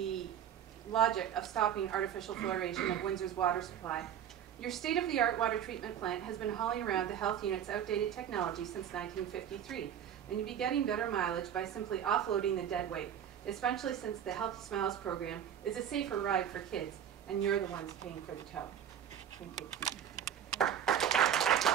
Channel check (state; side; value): quieter; left; 9.3 dB